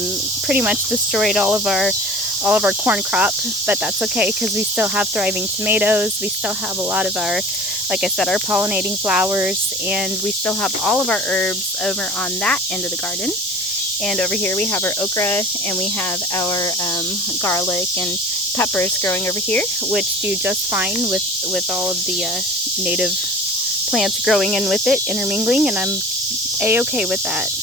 pretty much destroyed all of our corn crop, but that's okay because we still have thriving tomatoes. We still have a lot of our, like I said, our pollinating flowers, and we still have all of our herbs over on that end of the garden. And over here we have our okra, and we have our garlic and peppers growing over here, which do just fine with all of the native plants growing in with it, intermingling, and I'm a-okay with that.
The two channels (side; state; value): both; normal; correlation 0.41